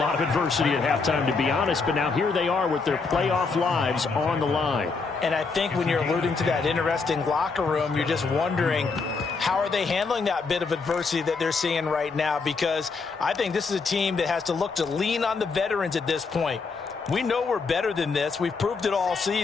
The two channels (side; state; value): right; quieter; 4.6 dB